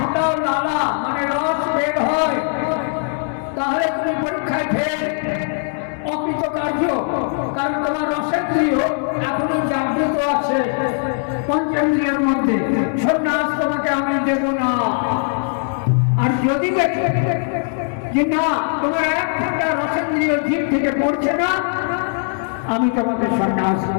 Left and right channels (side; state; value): right; silent; 58 dB below the other